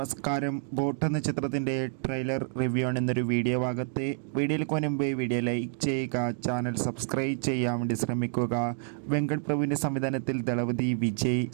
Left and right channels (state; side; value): silent; left; digital silence